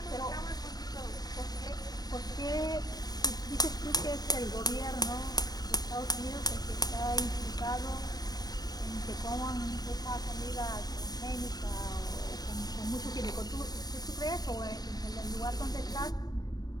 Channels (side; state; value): right; late; 0.19 ms